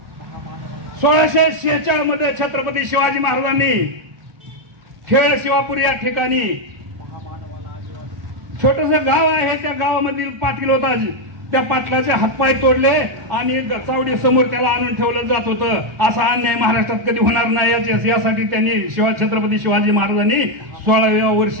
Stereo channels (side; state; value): left; late; 1.4 ms